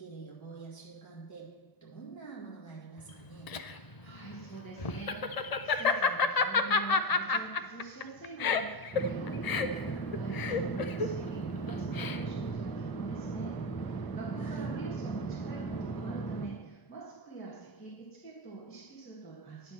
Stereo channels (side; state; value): right; late; 1.0 ms